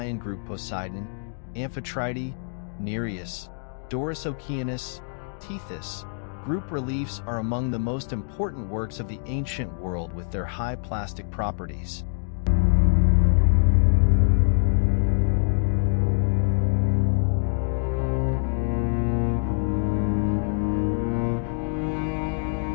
group Poseidon, Amphitrite, Nereus, Doris Oceanus, Tethys. Group reliefs are among the most important works of the ancient world with their high plastic properties.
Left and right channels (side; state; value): right; silent; digital silence